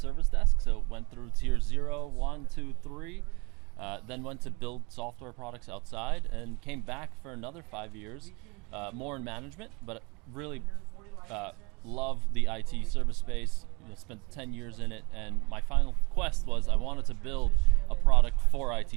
desk. So went through tier 0, 1, 2, 3. Then went to build software products outside and came back for another 5 years, more in management, but really love the IT service space. Spent 10 years in it, and my final quest was I wanted to build a product for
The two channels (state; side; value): quieter; left; 28.3 dB